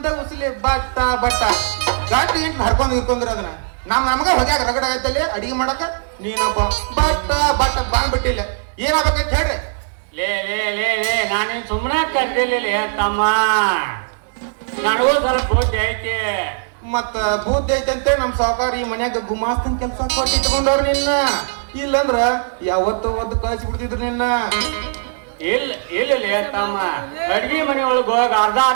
ಉಸಿಲಿ but but ಗಾಟಿ int ಹರ್ಕೊಂಡ್ ನಿಂತ್ಕೊಂಡ್ರ ಅದನ್ನ ನಮಗೆ ಹೊಗ್ಯಾಗ ರಗಡ ಆಗತ್ತಲ್ಲಿ ಅಡಿಗೆ ಮಾಡಕ ನೀನೊಬ್ಬ ಬಟ್ಟ ಬಟ್ಟ ಬಂದ್ಬಿಟ್ಟಿಲ್ಲ ಏನಾಗಬೇಕಂತ ಹೇಳ್ರಿ. ಲೇ ಲೇ ಲೇ ಲೇ ನಾನೇನ್ ಸುಮ್ಮನೆ ಕರ್ದಿಲ್ಲ ತಮ್ಮ, ನನಗೂ ಸ್ವಲ್ಪ ಬುದ್ಧಿ ಐತಿ. ಮತ್ತ ಬುದ್ಧಿ ಐತಂತೆ ನಮ್ ಸಾವುಕಾರ ಈ ಮನ್ಯಾಗ ಗುಮಾಸ್ತನ್ ಕೆಲ್ಸ ಕೊಟ್ಟು ಇಟ್ಕೊಂಡವ್ರ ನಿನ್ನ, ಇಲ್ಲಂದ್ರ ಯಾವತ್ತೋ ಒಂದು ಕಳ್ಸಿ ಬಿಡ್ತಿದ್ರು ನಿನ್ನ. ಇಲ್ಲ ಇಲ್ಲ ತಮ್ಮ, ಅಡ್ಗಿ ಮನೆ ಒಳಗ ಹೋಗಿ ಅರ್ಧ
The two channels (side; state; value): left; silent; digital silence